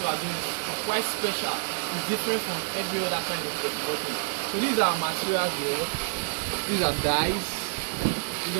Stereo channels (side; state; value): left; silent; 60 dB below the other